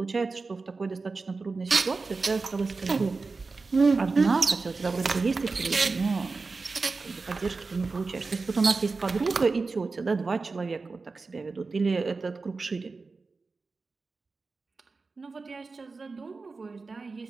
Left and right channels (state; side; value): quieter; left; 4.1 dB